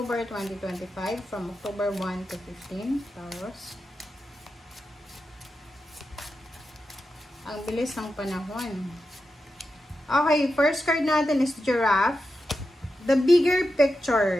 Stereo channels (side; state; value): both; normal; correlation 0.89